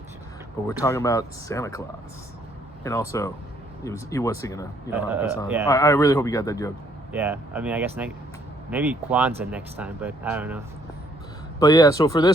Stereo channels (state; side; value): normal; both; correlation 0.66